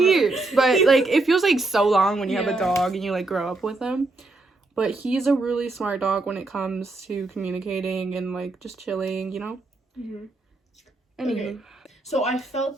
But, like, it feels like so long when you have a dog and you, like, grow up with him. But he's a really smart dog when it comes to communicating and, like, just chilling, you know? Mm-hmm. Anyway. Okay. So I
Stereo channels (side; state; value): left; quieter; 3.2 dB